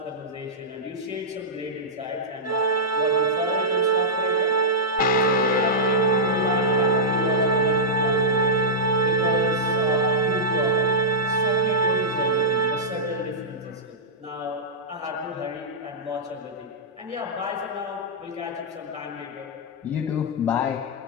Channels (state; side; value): normal; both; correlation -0.12